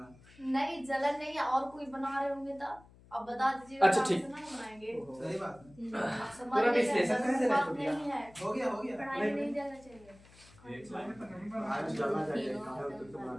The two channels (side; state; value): left; noise; hum, 24 dB below the sound